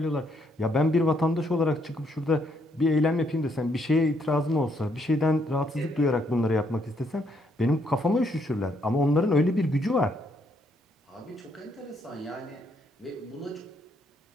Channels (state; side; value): normal; both; correlation 0.73